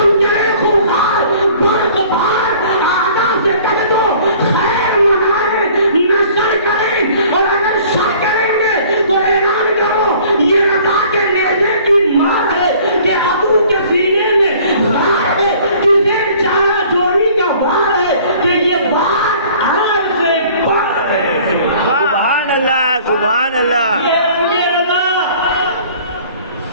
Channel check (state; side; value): inverted; both; correlation -0.52